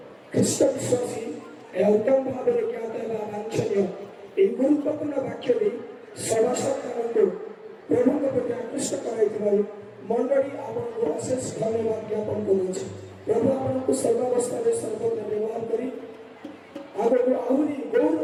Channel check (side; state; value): both; identical; correlation 1.00